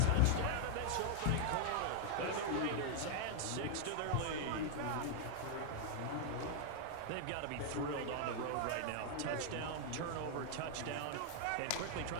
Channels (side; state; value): both; different; correlation 0.00